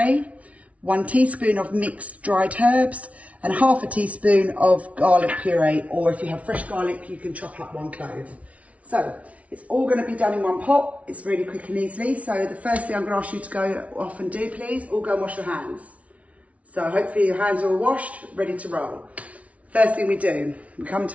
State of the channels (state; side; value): late; left; 0.066 ms